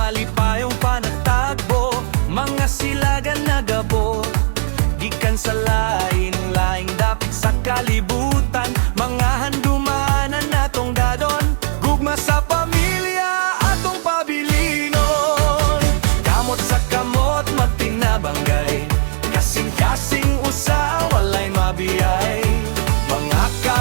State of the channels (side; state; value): left; silent; 67 dB below the other